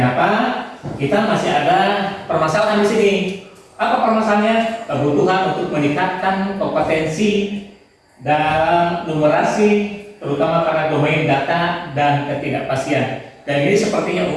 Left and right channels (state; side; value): identical; both; correlation 1.00